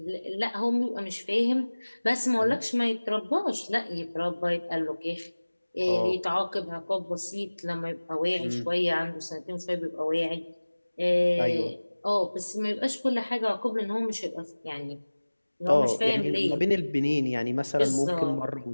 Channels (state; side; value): inverted; both; correlation -1.00